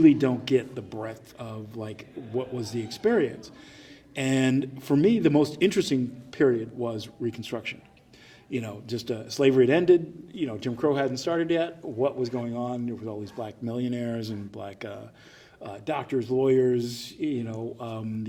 don't get the breadth of like what was the experience. And for me, the most interesting period was Reconstruction. Slavery had ended. Jim Crow hadn't started yet. What was going on? There was all these black millionaires and black doctors, lawyers.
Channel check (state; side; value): identical; both; correlation 1.00